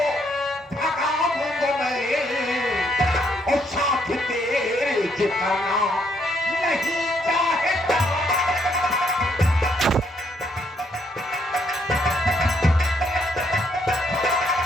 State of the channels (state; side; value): normal; both; correlation 0.72